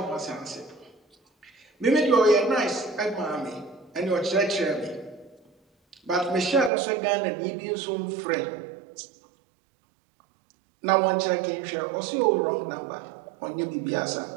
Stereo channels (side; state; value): left; drops out; at 6.7 s